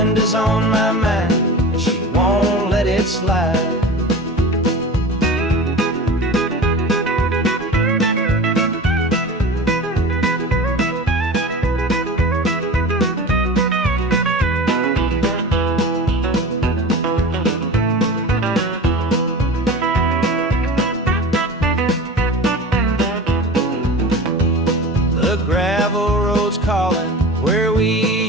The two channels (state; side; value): normal; both; correlation 0.34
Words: on my mind and she won't let it slide.